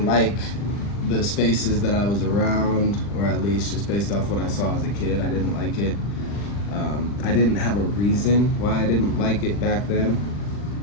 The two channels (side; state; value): right; late; 40 ms